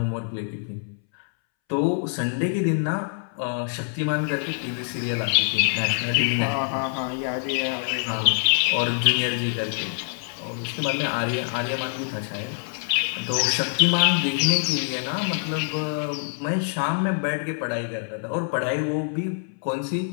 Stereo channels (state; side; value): silent; right; 62 dB below the other